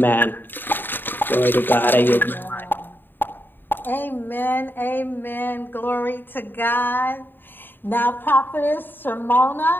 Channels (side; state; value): right; late; 0.094 ms